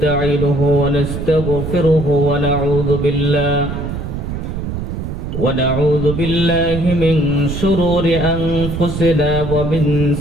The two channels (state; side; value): noise; right; rumble, 5 dB below the sound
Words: ওয়া নাস্তাগফিরুহু ونعوذ بالله من شرور أنفسنا ومن